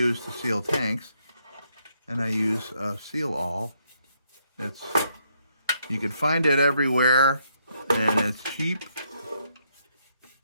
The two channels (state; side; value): inverted; both; correlation -0.75